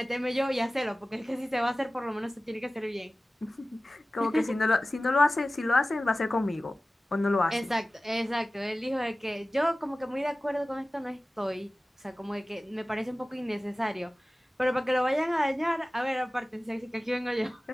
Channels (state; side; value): normal; both; correlation 0.96